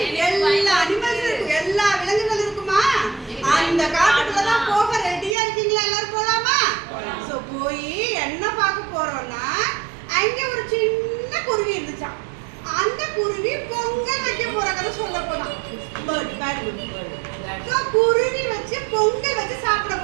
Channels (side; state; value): left; drops out; at 5.4 s